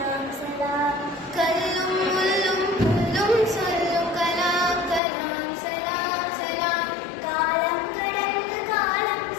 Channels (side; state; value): right; drops out; at 5.0 s